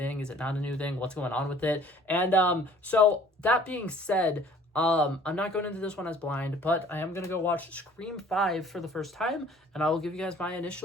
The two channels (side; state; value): both; normal; correlation 0.53